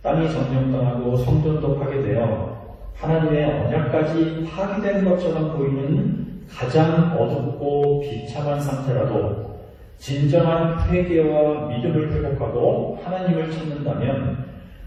땅이 점령당하고 성전도 파괴되어 하나님의 언약까지 파괴된 것처럼 보이는 가장 어둡고 비참한 상태라도 진정한 회개와 믿음을 회복하고 하나님을 찾는다면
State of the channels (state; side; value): identical; both; correlation 1.00